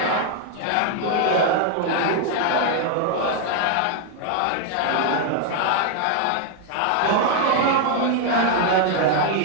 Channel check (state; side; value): different; both; correlation 0.00